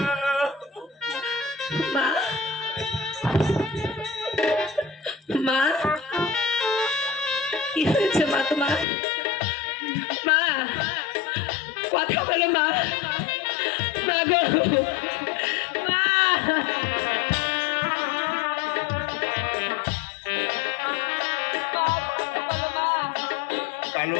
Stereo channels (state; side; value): drops out; right; at 8.8 s